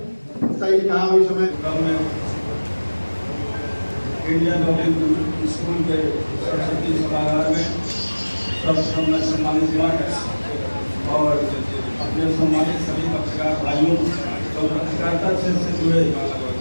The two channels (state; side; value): inverted; both; correlation -1.00